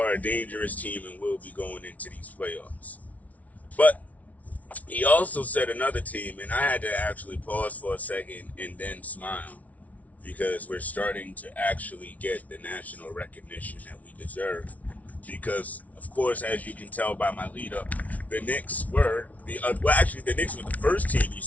a dangerous team and will be going into these playoffs. But he also said another team, and I had to actually pause for a second and then smile because we're starting to actually get the national recognition that we deserve. Because, of course, as you can tell by my lead up, the Knicks were the Knicks were the first team he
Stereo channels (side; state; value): right; late; 0.070 ms